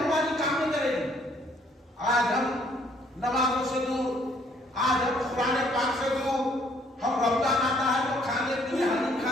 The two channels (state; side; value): normal; both; correlation 0.64